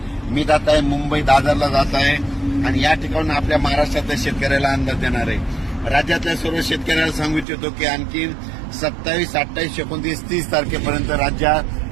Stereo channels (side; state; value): left; drops out; at 7.5 s